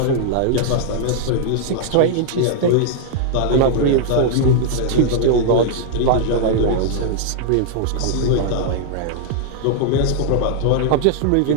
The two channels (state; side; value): different; both; correlation -0.01